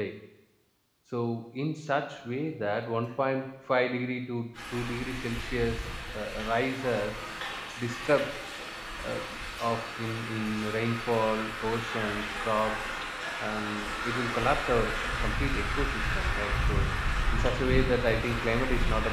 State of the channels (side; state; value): both; identical; correlation 1.00